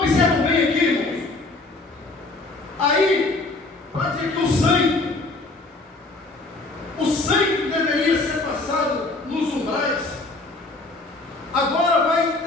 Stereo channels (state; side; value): quieter; right; 3.2 dB